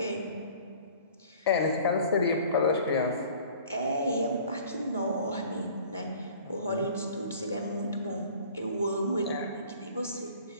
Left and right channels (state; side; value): inverted; both; correlation -0.49